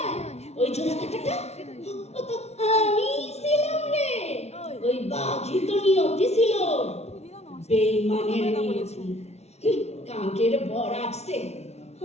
ওই জোড়া কাটাটা ও তো আমি ছিলাম রে। ওই বাঘই তো নিয়তি ছিল, বেইমানের নিয়তি। কাঙ্কের বর আসছে,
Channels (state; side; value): late; right; 0.31 ms